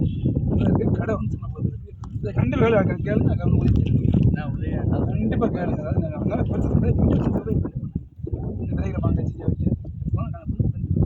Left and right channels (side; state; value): both; identical; correlation 1.00